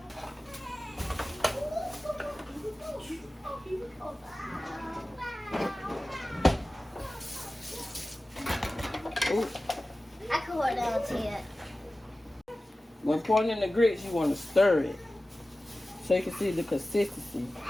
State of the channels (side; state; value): both; normal; correlation 0.96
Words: Ooh. I can hold on to it. When pouring in the grits, you want to stir it so you can see the consistency.